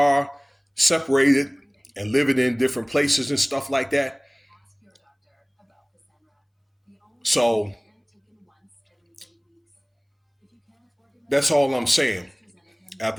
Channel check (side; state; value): both; identical; correlation 1.00